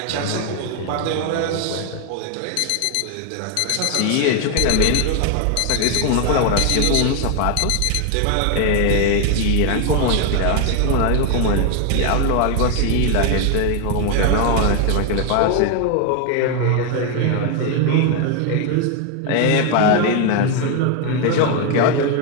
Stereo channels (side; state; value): both; different; correlation 0.01